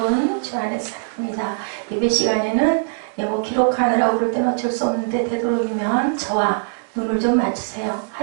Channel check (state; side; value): silent; left; digital silence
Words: 주 안에서 사랑합니다. 예배 시간에는 뭐 기록하느라고 그럴 때는 어쩔 수 없는데, 되도록이면 저와 눈을 좀 맞추세요.